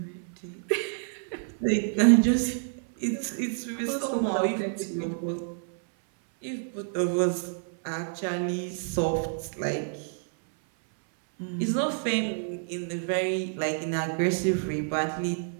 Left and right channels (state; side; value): silent; left; 59 dB below the other